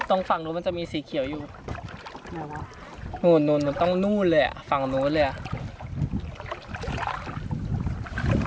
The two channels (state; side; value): identical; both; correlation 1.00